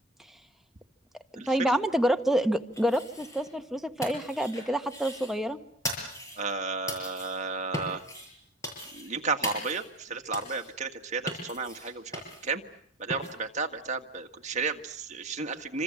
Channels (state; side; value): normal; both; correlation 0.47